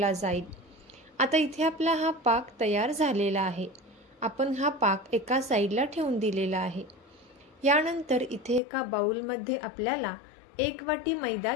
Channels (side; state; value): right; drops out; at 8.6 s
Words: जाईल। आता इथे आपला हा पाक तयार झालेला आहे। आपण हा पाक एका साईडला ठेवून दिलेला आहे। यानंतर इथे एका बाउलमध्ये आपल्याला 1 वाटी मैदा